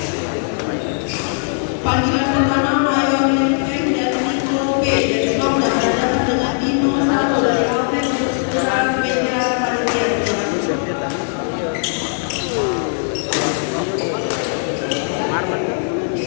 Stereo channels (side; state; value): right; silent; 64 dB below the other